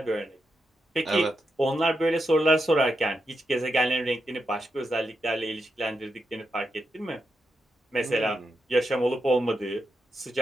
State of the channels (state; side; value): normal; both; correlation 0.85